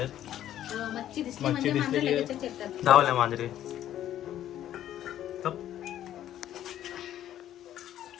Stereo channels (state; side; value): quieter; right; 11.8 dB